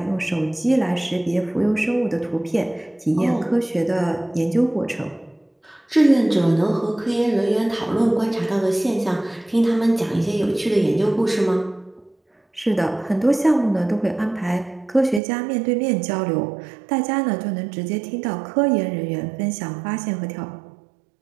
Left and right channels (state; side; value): drops out; left; at 15.2 s